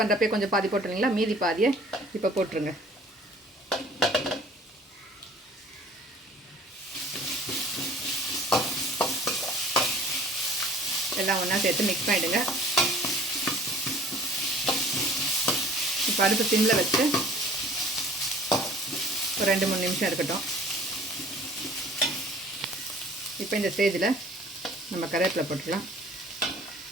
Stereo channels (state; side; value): normal; both; correlation 0.50